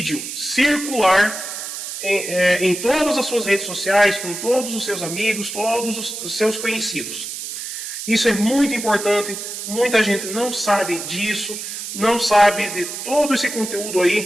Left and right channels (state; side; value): noise; right; hiss, 7 dB below the sound